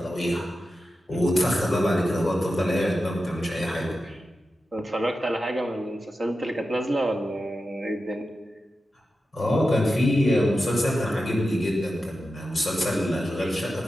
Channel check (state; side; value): normal; both; correlation 0.91